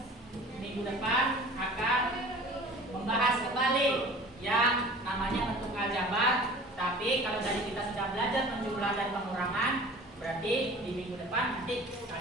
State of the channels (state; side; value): normal; both; correlation 0.44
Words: minggu depan akan membahas kembali yang namanya bentuk aljabar. Tapi kalau dari kita sudah belajar penjumlah dan pengurangan, berarti di minggu depan nanti